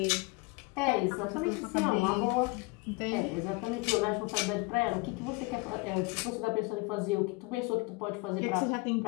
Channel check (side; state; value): right; quieter; 25.3 dB